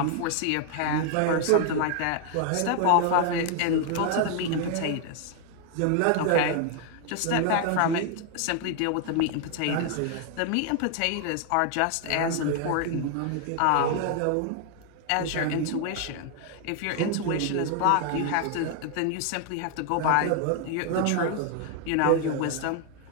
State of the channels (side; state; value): both; different; correlation 0.00